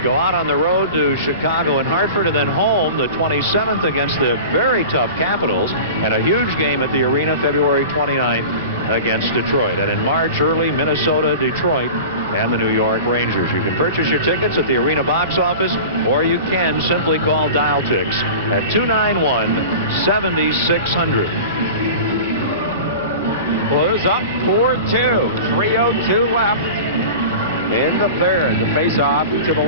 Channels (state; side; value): inverted; both; correlation -0.35